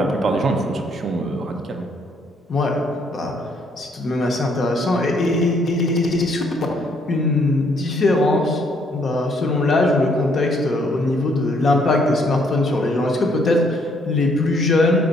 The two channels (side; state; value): both; normal; correlation 0.68